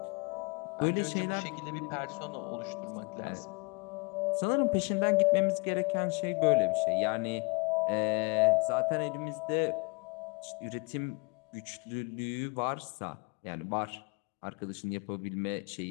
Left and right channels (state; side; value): quieter; right; 30.4 dB